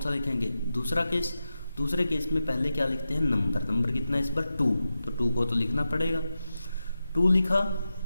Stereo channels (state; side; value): inverted; both; correlation -0.91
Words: लिखेंगे, दूसरा केस। दूसरे केस में पहले क्या लिखते हैं, नंबर कितना है इस बार 2, तो 2 को तो लिखना पड़ेगा, 2 लिखा,